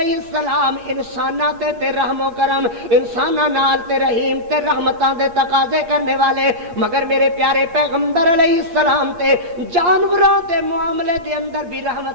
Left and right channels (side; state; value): left; late; 8.4 ms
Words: السلام انساناں تے رحم و کرم، انساناں نال تے رحیم تے رحمتاں دے تقاضے کرنے والے، مگر میرے پیارے پیغمبر علیہ السلام تے جانوراں دے معاملے دے اندر بھی